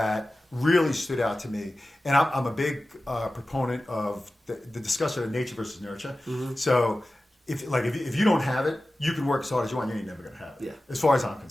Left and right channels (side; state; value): both; normal; correlation 0.95